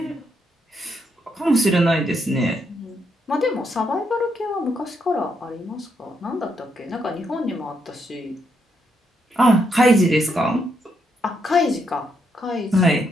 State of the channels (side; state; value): both; normal; correlation 0.78